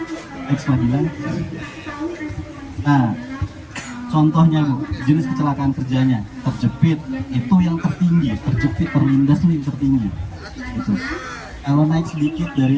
Ekstra bilang, nah contohnya Bu, jenis kecelakaan kerjanya terjepit itu yang tertinggi, terjepit terlindas itu yang tertinggi. Gitu. Kalau naik sedikit dari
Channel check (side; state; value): both; identical; correlation 1.00